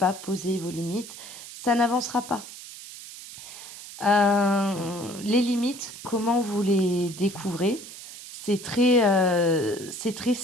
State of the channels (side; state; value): right; noise; hiss, 14 dB below the sound